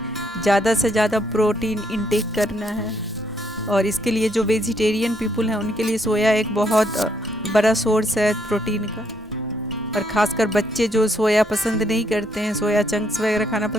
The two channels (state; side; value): normal; both; correlation 0.73